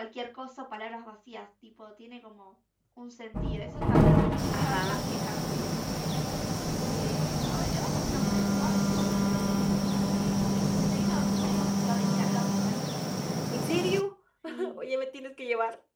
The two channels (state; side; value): identical; both; correlation 1.00